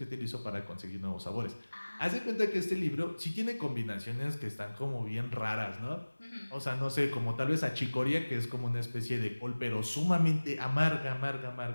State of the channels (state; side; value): inverted; both; correlation -1.00